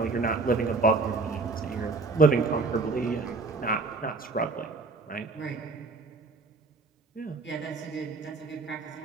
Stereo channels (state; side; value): quieter; left; 3.9 dB